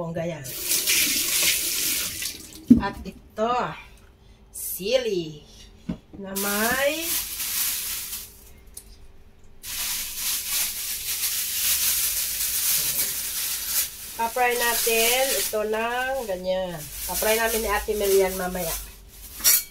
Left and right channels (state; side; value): identical; both; correlation 1.00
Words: yan. At ito, sili na may pa-fry natin ito ng ganyan. Pa-fry namin ni Ate Melian mamaya.